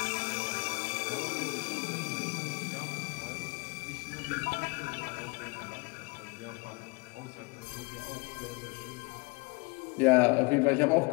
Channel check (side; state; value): right; quieter; 28.4 dB